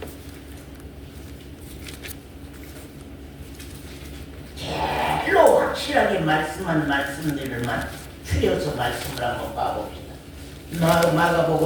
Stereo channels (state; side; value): identical; both; correlation 1.00